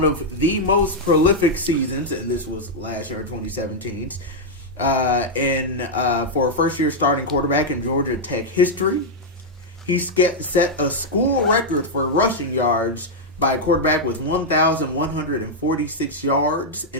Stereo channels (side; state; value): both; normal; correlation -0.03